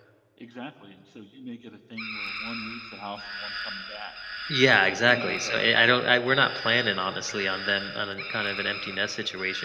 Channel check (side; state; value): both; identical; correlation 1.00